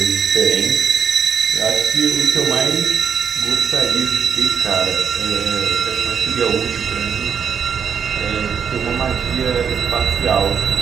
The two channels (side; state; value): left; quieter; 7.2 dB